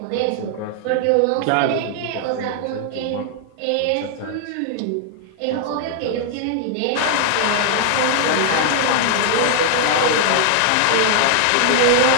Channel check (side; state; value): both; different; correlation 0.00